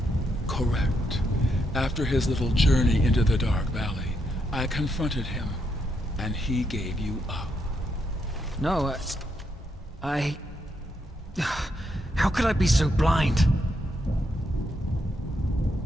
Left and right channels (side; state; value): both; normal; correlation 0.79